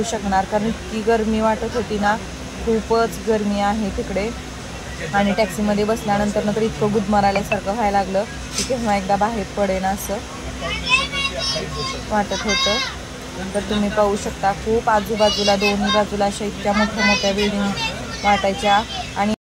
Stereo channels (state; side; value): identical; both; correlation 1.00